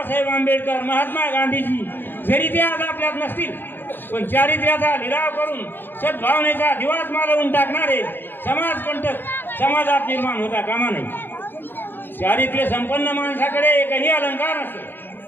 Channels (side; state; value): right; late; 0.097 ms